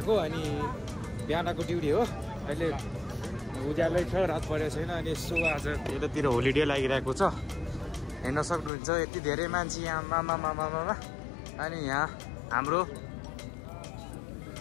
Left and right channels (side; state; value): right; drops out; at 8.7 s